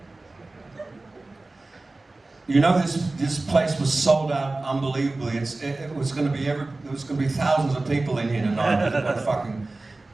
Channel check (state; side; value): quieter; left; 3.1 dB